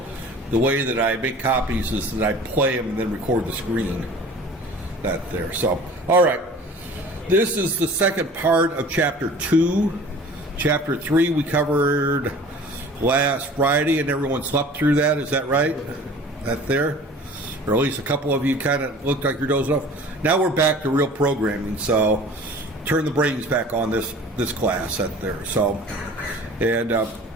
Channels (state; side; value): normal; both; correlation 0.44